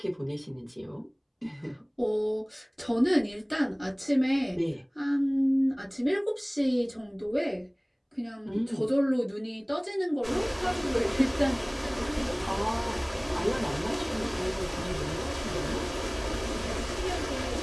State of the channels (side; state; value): both; identical; correlation 1.00